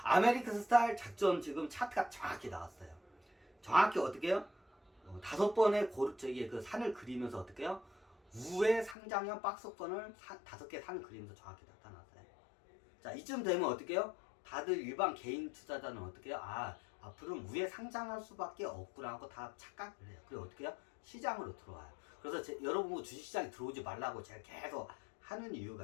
아메리칸 스타일 작전 지금 차트가 정확히 나왔어요. 정확히 어떻게 해요? 5번의 그 산을 그리면서 어떻게 해요? 우회 상장형 박스권을 5개 산을 그리면서 정확히 나타났어요. 자, 이쯤 되면 어떻게 해요? 다들 일반 개인 투자자는 어떻게 해요? 앞으로는 우회 상장할 수밖에 없구나 하고 다 착각을 해요. 그리고 어떻게 해요? 시장으로 들어와요. 그래서 여러분 주식시장에 들어오지 말라고 제가 계속 하는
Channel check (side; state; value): right; drops out; at 9.0 s